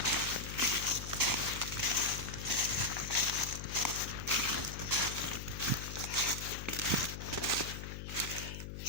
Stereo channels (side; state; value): left; noise; hum, 8 dB below the sound